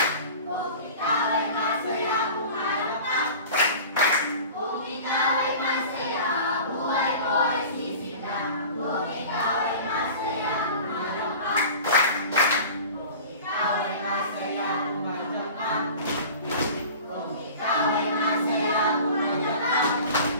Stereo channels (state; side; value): inverted; both; correlation -0.39